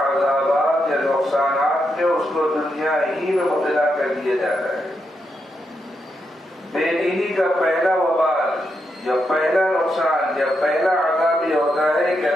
یا نقصانات میں اس کو دنیا ہی میں مبتلا کر دیا جاتا ہے۔ بے دینی کا پہلا وبال یا پہلا نقصان یا پہلا عذاب یہ ہوتا ہے کہ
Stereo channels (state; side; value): normal; both; correlation 0.83